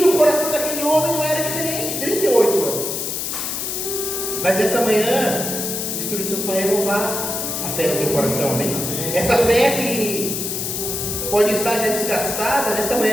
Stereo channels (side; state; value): left; noise; hiss, 3 dB below the sound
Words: coração daquele homem não era diferente, 38 anos. Mas nessa manhã, o Espírito Santo vai renovar a fé no teu coração, amém? Essa fé que pode estar já desgastada, nessa